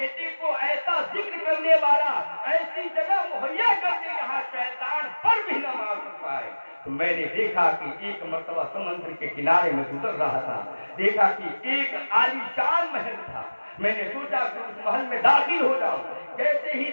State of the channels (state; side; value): inverted; both; correlation -1.00